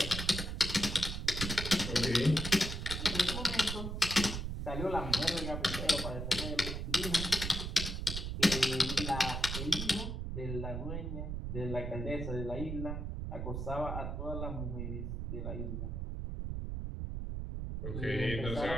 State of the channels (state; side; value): noise; right; rumble, 3 dB below the sound